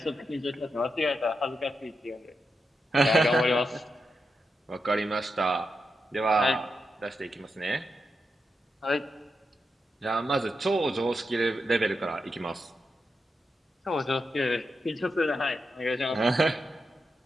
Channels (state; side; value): normal; both; correlation 0.86